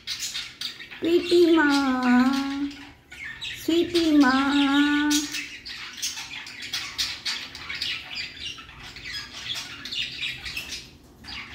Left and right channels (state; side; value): identical; both; correlation 1.00